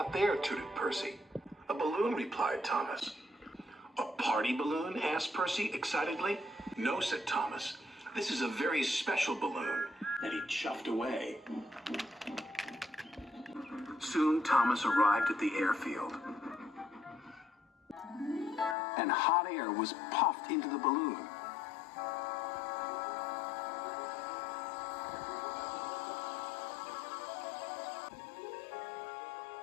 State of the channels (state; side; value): drops out; right; at 18.8 s